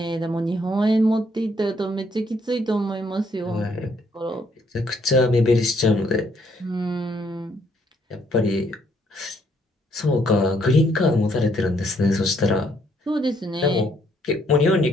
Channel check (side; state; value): both; normal; correlation 0.69